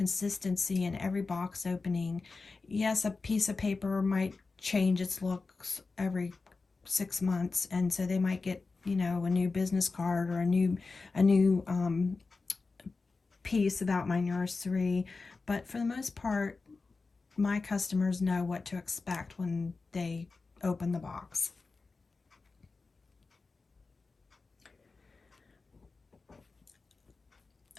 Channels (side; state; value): right; quieter; 4.0 dB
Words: in every box opening. Yes, a piece of paper might change its looks every 6 months, and so they might get, a new business card or a new piece about my nursery, but for the most part, my customers know what to expect when they open the box.